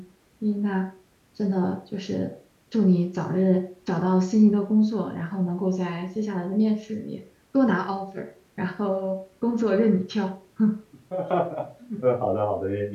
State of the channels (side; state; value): both; identical; correlation 1.00